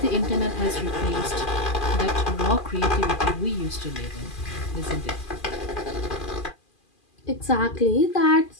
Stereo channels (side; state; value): right; late; 2.4 ms